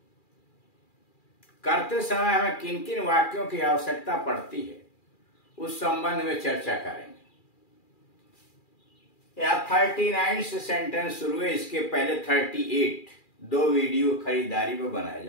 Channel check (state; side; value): late; right; 2.4 ms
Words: करते समय हमें किन किन वाक्यों की आवश्यकता पड़ती है उस संबंध में चर्चा करेंगे। यहाँ 39 से सेंटेंस शुरू है, इसके पहले 38 दो वीडियो खरीदारी में बनाए